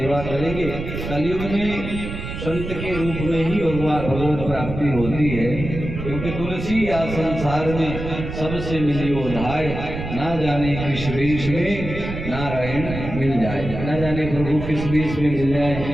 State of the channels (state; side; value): noise; right; rumble, 7 dB below the sound